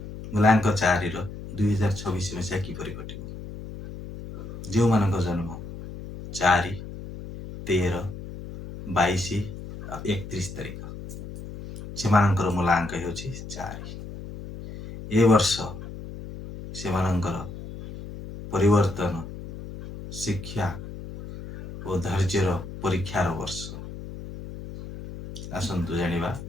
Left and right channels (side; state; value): left; noise; hum, 11 dB below the sound